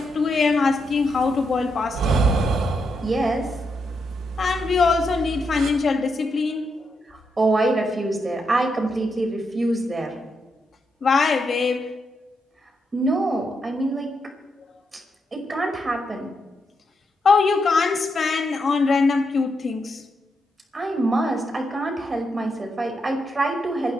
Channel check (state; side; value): normal; both; correlation 0.82